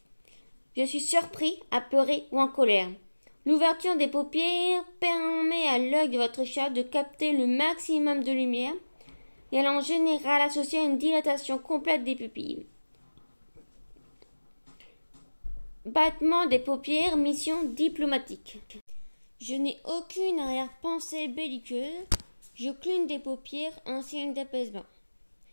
Je suis surpris, apeuré ou en colère. L'ouverture des paupières permet à l'œil de votre chat de capter le maximum de lumière et elle est en général associée à une dilatation complète des pupilles. Battement des paupières, mission diplomatique. Je n'ai aucune arrière-pensée belliqueuse. Je cligne des paupières, un signe d'apaisement.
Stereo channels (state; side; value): inverted; both; correlation -1.00